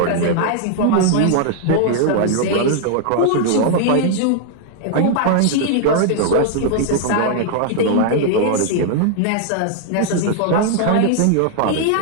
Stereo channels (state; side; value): different; both; correlation 0.00